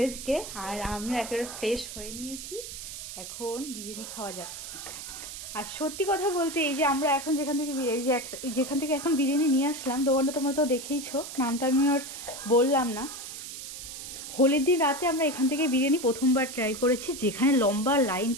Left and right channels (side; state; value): right; noise; hiss, 10 dB below the sound